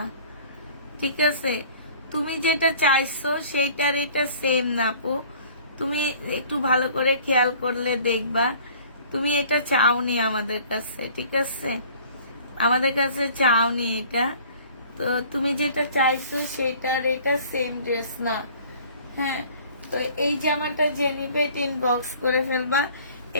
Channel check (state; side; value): inverted; both; correlation -0.51